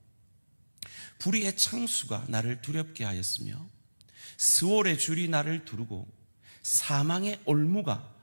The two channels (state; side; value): inverted; both; correlation -1.00